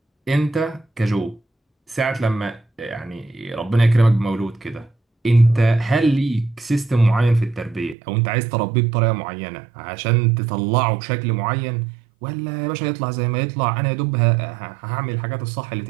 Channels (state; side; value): drops out; left; at 8.0 s